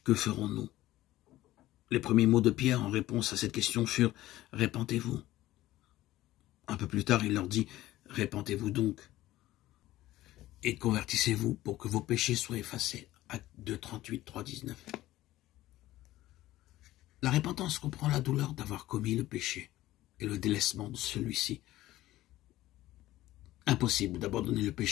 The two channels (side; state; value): right; quieter; 15.8 dB